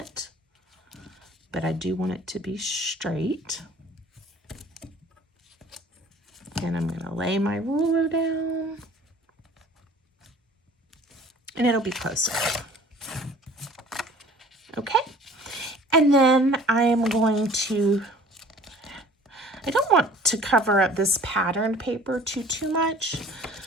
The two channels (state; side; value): normal; both; correlation 0.49